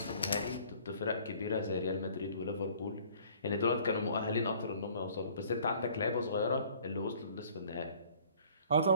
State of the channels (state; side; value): inverted; both; correlation -0.55